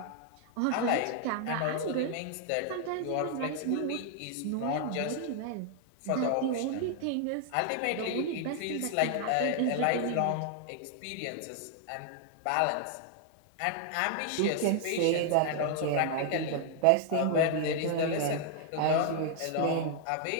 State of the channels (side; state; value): both; different; correlation 0.00